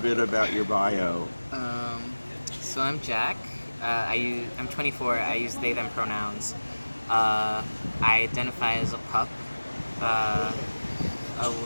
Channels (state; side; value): inverted; both; correlation -1.00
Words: about your bio? Um, so I'm Jack. I'm 24. I use they them pronouns. I identify as a pup, uh,